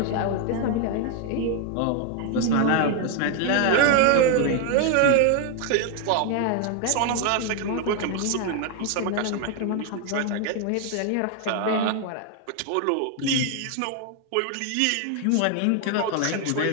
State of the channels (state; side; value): different; both; correlation 0.01